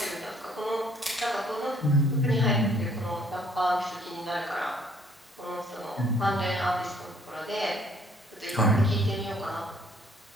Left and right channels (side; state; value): both; normal; correlation 0.61